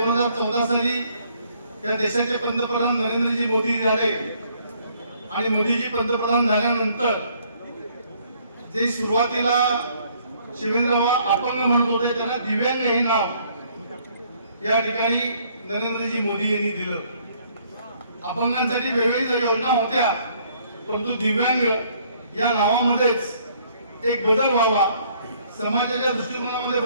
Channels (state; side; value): inverted; both; correlation -0.64